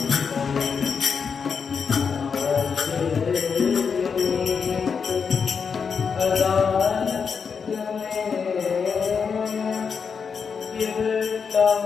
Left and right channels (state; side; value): quieter; right; 6.0 dB